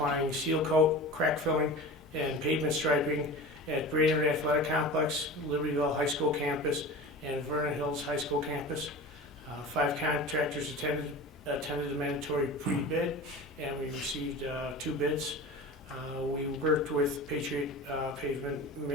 seal coat, crack filling, and pavement striping at Brainerd Athletic Complex, Libertyville High School campus, and Vernon Hills High School campus. 5 contractors attended the mandatory pre-bid, and we received 2 bids. We worked with Patriot Pavement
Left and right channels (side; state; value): both; normal; correlation 0.34